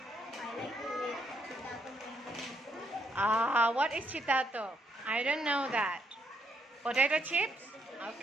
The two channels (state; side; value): normal; both; correlation 0.74